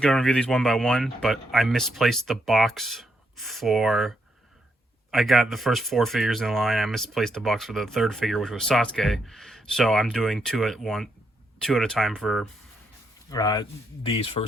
going to review these one by one, but I misplaced the box for. I got the first four figures in line. I misplaced the box for the third figure, which was Sasuke. So I'm doing two at a time for these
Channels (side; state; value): both; normal; correlation 0.78